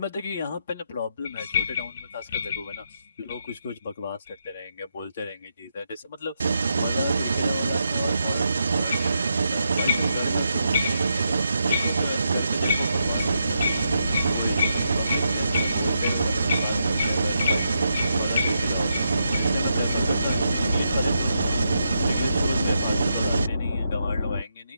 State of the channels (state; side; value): inverted; both; correlation -0.82